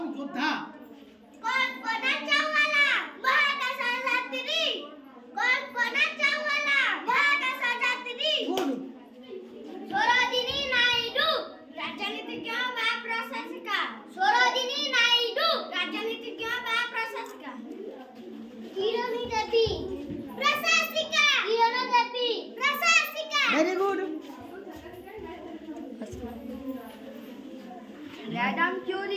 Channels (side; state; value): both; identical; correlation 1.00